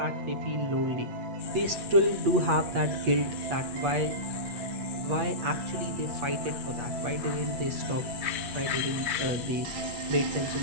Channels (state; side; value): late; left; 8.4 ms